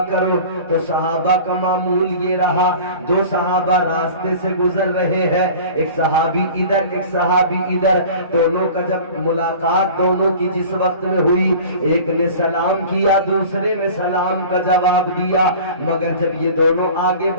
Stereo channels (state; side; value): inverted; both; correlation -0.41